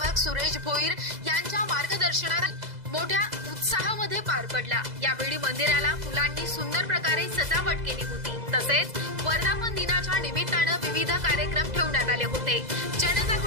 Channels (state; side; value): late; left; 2.0 ms